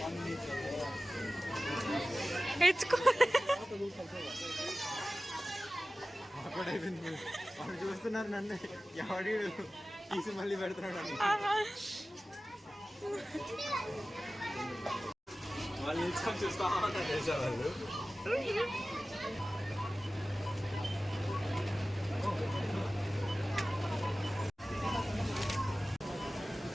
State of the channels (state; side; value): normal; both; correlation 0.96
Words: ఎచ్చుకో. వాళ్ళు చూస్తున్నారు నన్ను, ఎవడి తీసి మళ్ళీ పెడుతున్నాడు. వాళ్ళు నిల్చుకొని చూస్తా ఉన్నారు తెలుసా వాళ్ళు.